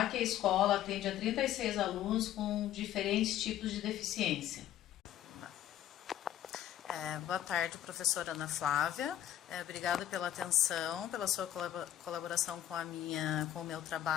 que a escola atende a 36 alunos com diferentes tipos de deficiência. Boa tarde, professora Ana Flávia. Obrigada pela atenção, pela sua colaboração com o meu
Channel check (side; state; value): right; quieter; 11.9 dB